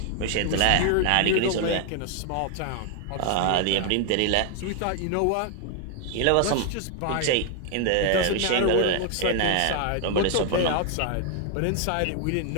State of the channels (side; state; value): both; different; correlation 0.00